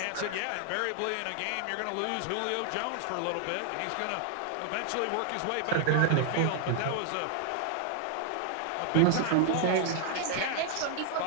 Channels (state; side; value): different; both; correlation 0.00